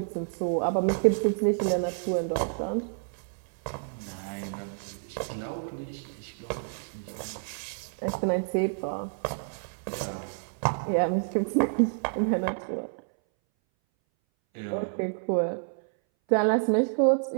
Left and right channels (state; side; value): silent; left; 59 dB below the other